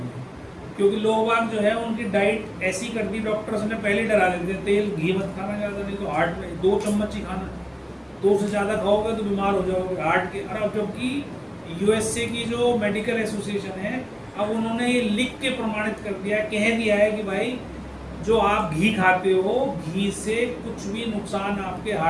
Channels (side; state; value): both; identical; correlation 1.00